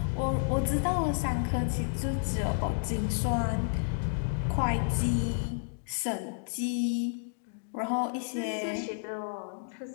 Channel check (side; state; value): right; silent; digital silence